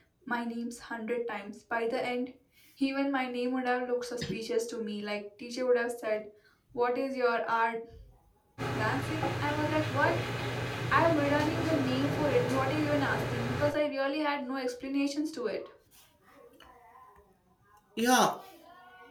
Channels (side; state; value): both; identical; correlation 1.00